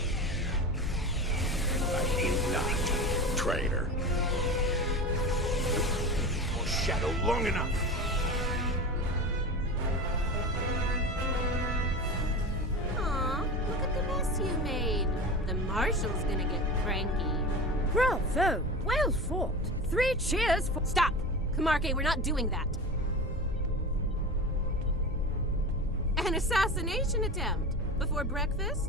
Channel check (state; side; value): normal; both; correlation 0.28